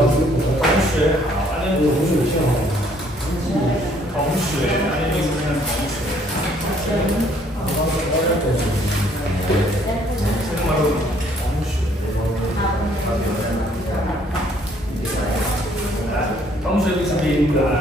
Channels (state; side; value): normal; both; correlation 0.63